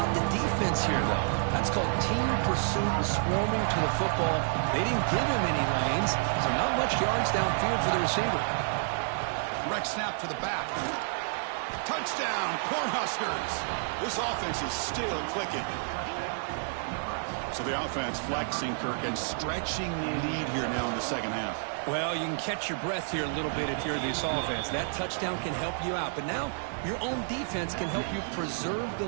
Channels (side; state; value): left; silent; digital silence